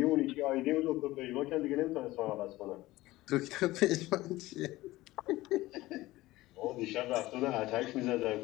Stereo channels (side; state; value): right; quieter; 18.0 dB